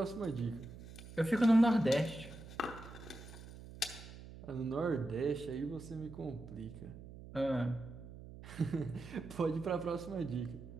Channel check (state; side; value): noise; right; hum, 15 dB below the sound